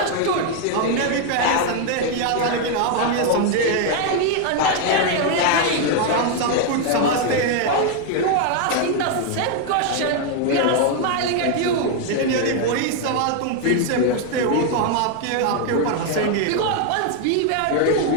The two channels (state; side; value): different; both; correlation 0.01